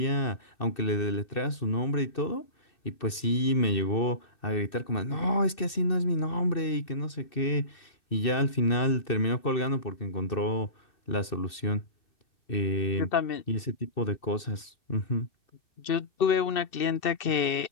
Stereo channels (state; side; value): late; right; 2.6 ms